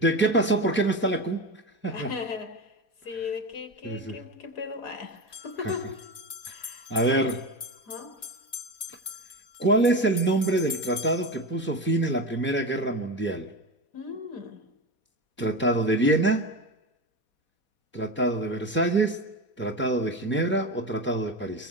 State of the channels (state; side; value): late; right; 4.2 ms